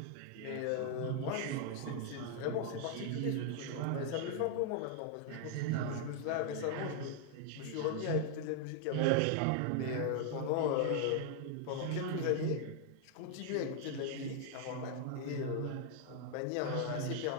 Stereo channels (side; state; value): both; different; correlation 0.00